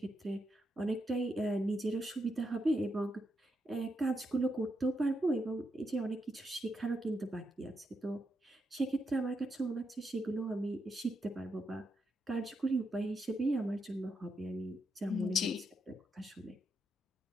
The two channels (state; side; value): normal; both; correlation 0.82